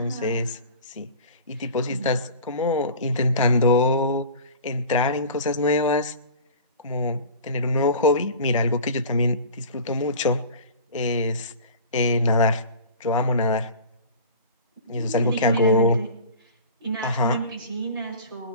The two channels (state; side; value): inverted; both; correlation -0.39